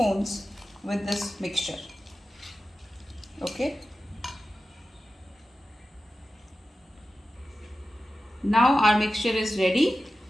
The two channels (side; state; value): both; normal; correlation 0.94